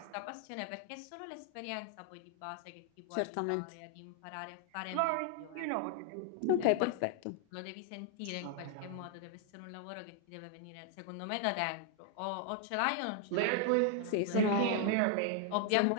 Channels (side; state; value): both; different; correlation 0.00